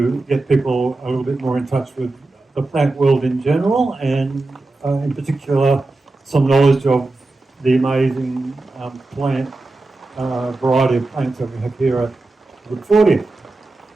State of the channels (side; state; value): left; quieter; 3.2 dB